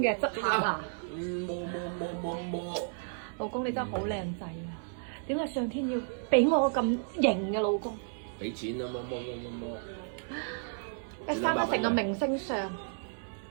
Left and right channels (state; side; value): silent; left; 56 dB below the other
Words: 側下。摸。老公你真係好靚仔啊！點解上天要俾我個咁型嘅老公？俾錢啊！摸。一生得成個明星相。